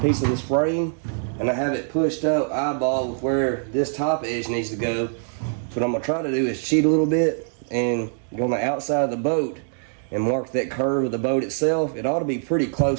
of this frame, and I have it pushed up eyeball with where this top edge needs to go. What I'm going to try to do is cheat a little bit and go on the outside of the boat and mark that curve of the boat itself. It ought to be pretty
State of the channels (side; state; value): left; silent; digital silence